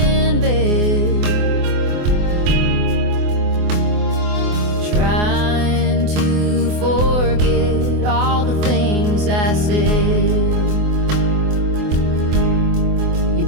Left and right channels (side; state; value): left; late; 24 ms